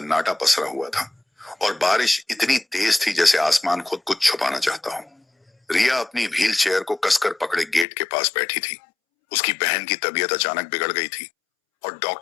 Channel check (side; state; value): right; drops out; at 7.9 s